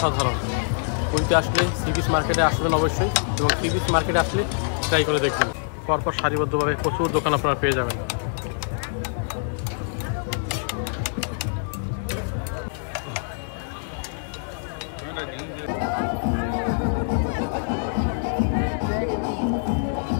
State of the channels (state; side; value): silent; right; digital silence